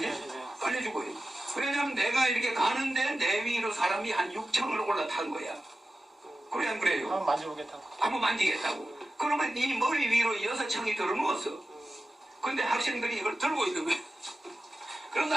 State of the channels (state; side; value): normal; both; correlation 0.93